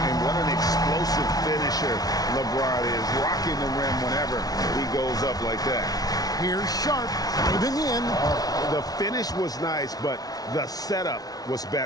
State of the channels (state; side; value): late; right; 0.18 ms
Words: And what an explosive finisher LeBron is, rocking the rim whenever he goes up like that. Here's Sharp driving in. The finish was nice, but the setup was